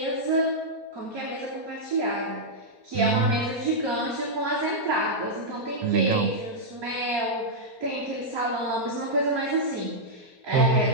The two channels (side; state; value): left; late; 4.2 ms